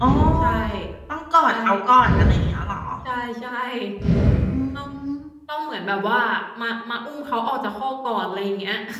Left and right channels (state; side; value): identical; both; correlation 1.00